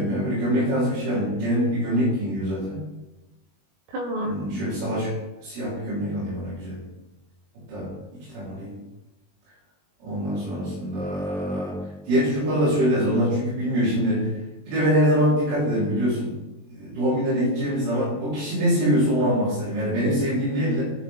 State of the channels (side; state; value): left; late; 21 ms